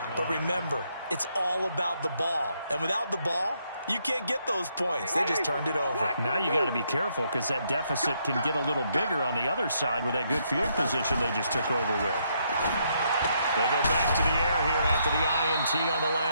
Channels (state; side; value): inverted; both; correlation -0.74